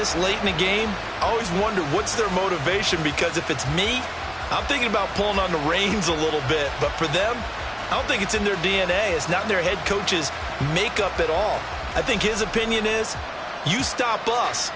late in the game, I always wonder what's their motivation, because if it's me, I'm thinking about pulling on the reins a little bit. But for them, I don't think it's in their DNA. It's not in their head coach's makeup at all. I think his opinion is, you stop us,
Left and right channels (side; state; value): both; identical; correlation 1.00